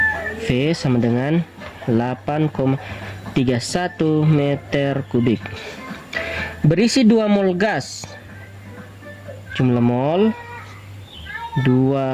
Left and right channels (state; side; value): identical; both; correlation 1.00